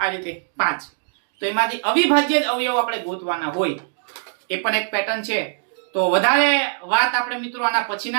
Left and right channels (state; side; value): silent; left; digital silence